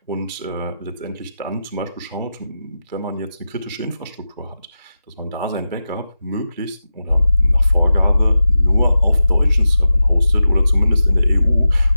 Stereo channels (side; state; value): both; inverted; correlation -0.92